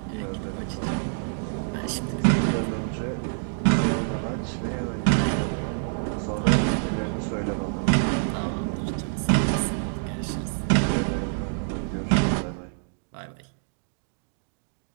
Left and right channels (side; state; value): left; silent; digital silence